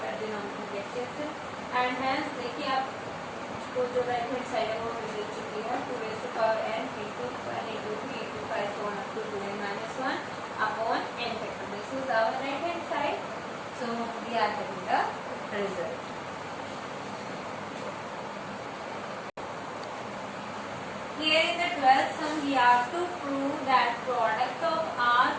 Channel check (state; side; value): identical; both; correlation 1.00